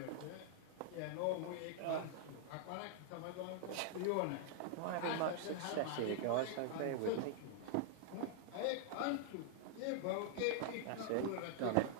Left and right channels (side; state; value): both; different; correlation -0.01